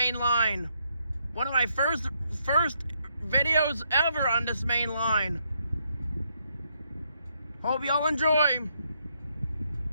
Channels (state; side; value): inverted; both; correlation -0.76